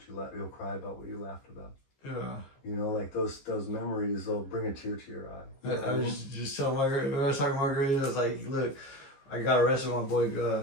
what you laughed about. Yeah. Like those memories, they'll bring a tear to your eye. I was just telling Margaret, when I was talking to Margaret, I was like, look, I got arrested with my boy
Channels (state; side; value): late; right; 15 ms